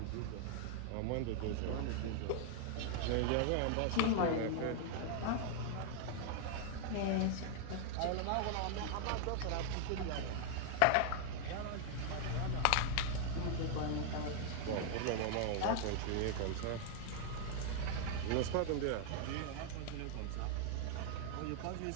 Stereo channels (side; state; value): both; different; correlation 0.00